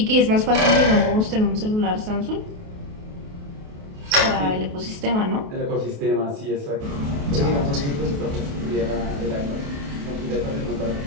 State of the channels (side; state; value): left; late; 28 ms